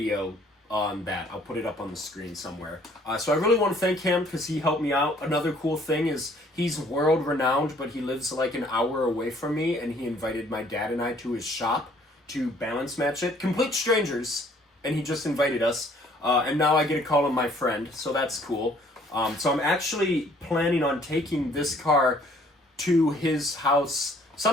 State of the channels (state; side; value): normal; both; correlation 0.60